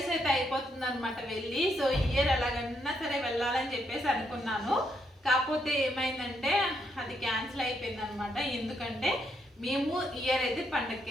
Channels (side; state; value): both; normal; correlation 0.76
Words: అయితే అయిపోతుంది అనమాట వెళ్ళి. సో ఈ ఇయర్ ఎలాగన్నా సరే వెళ్ళాలని చెప్పేసి అనుకున్నాను. కాకపోతే ఏమైందంటే అది క్యాన్సిల్ అయిపోయింది అనమాట. ఎందుకంటే మేము ఇయర్ అయితే పండగకి